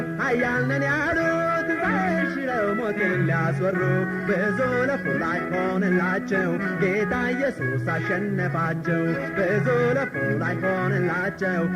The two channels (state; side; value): identical; both; correlation 1.00